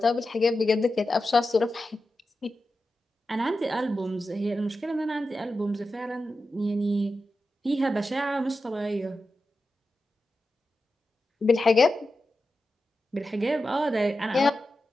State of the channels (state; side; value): normal; both; correlation 0.91